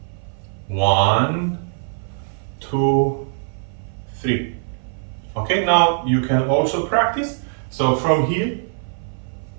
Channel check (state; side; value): silent; left; 56 dB below the other